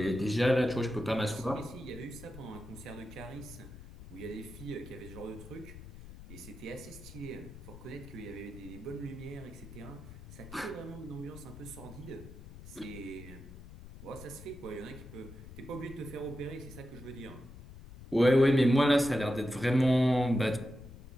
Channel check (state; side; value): noise; left; rumble, 15 dB below the sound